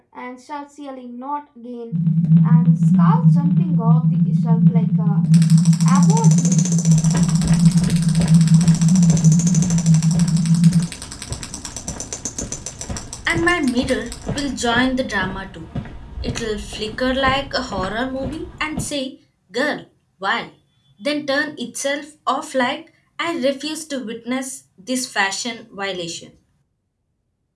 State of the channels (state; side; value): identical; both; correlation 1.00